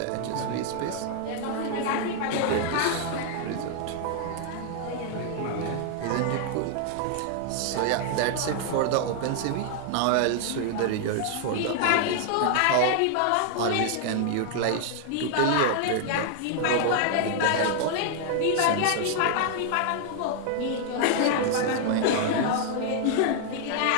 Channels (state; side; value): different; both; correlation 0.00